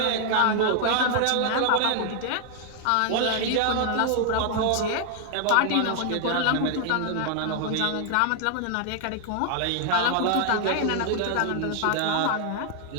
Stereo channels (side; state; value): both; different; correlation 0.00